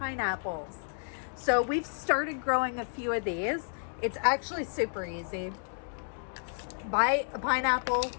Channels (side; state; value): right; silent; digital silence